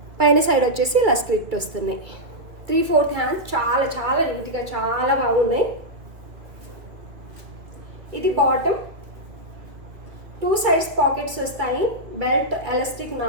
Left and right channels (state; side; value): late; left; 2.6 ms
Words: సైడ్ వచ్చేసి ఇలా స్లిట్ వస్తున్నాయి. 3/4 హ్యాండ్స్. చాలా చాలా నీట్గా చాలా బాగున్నాయి. ఇది బాటమ్. 2 సైడ్స్ పాకెట్స్ వస్తాయి. బెల్ట్, ఎలాస్టిక్,